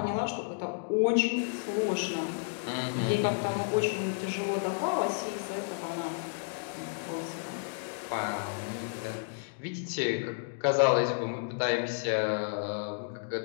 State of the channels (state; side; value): silent; right; digital silence